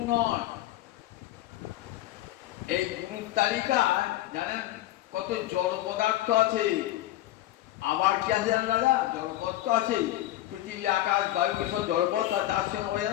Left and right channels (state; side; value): quieter; right; 14.9 dB